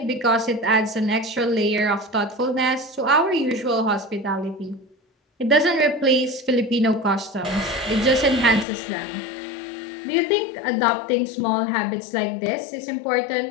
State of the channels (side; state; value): right; drops out; at 8.7 s